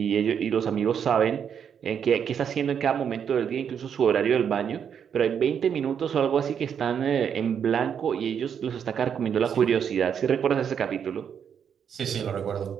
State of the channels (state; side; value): quieter; left; 7.8 dB